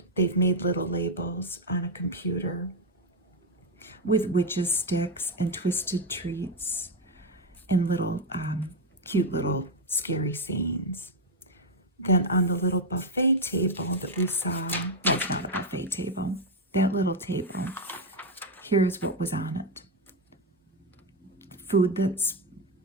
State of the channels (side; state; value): both; normal; correlation 0.05